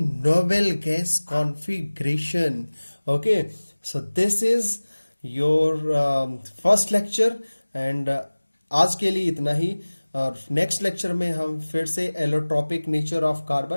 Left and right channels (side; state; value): both; inverted; correlation -1.00